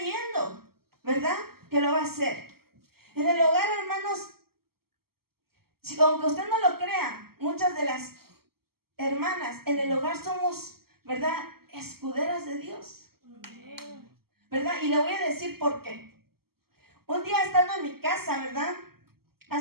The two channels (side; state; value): left; late; 0.95 ms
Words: ¿verdad? Que lo va a hacer. En el hogar, hermanos, aunque usted no lo crea, muchas de las hermanas en el hogar somos, ¿verdad?, escuderas de Dios, ¿verdad? Y le voy a decir por qué. Un día estando en mi casa, ¿verdad?,